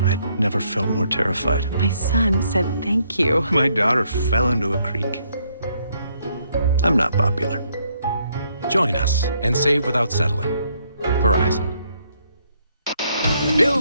I'd never felt more terrified. My son said thank you. My daughter fell into a creek. I'm not popular. Join us and save without settling. Verizon.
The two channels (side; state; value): both; inverted; correlation -0.71